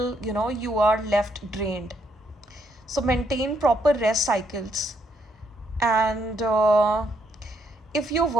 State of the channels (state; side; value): normal; both; correlation 0.74